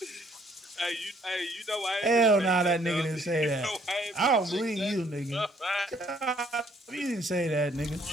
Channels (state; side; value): normal; both; correlation 0.64